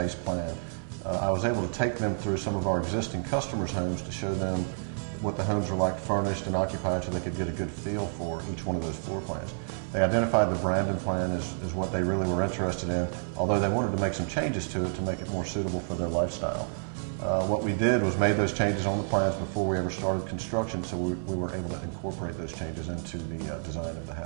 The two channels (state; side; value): silent; left; 58 dB below the other